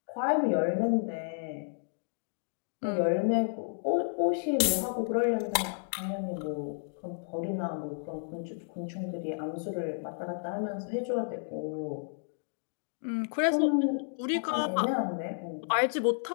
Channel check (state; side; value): silent; right; digital silence